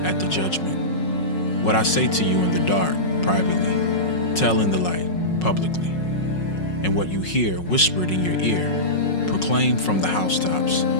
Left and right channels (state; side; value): late; right; 5.5 ms